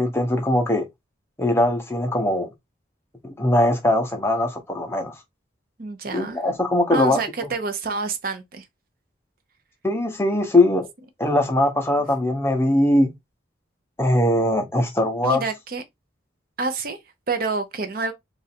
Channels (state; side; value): normal; both; correlation 0.62